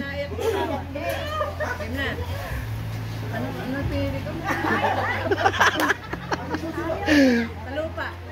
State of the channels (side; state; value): both; identical; correlation 1.00